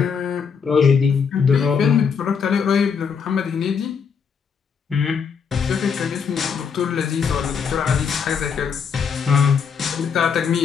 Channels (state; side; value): quieter; right; 6.4 dB